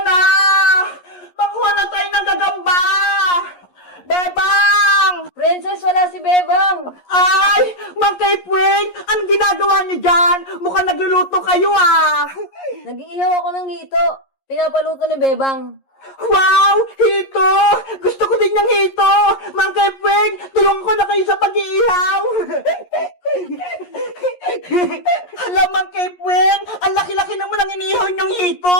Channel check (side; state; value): right; late; 11 ms